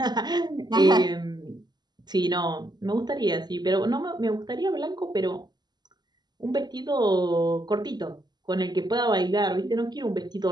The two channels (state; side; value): late; left; 0.20 ms